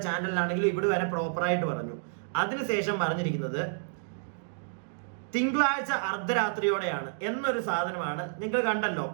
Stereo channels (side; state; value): left; silent; digital silence